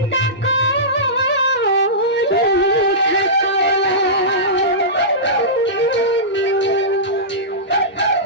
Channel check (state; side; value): normal; both; correlation -0.18